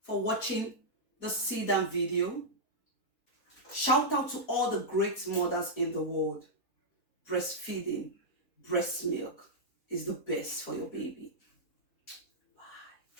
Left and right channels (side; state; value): right; late; 4.1 ms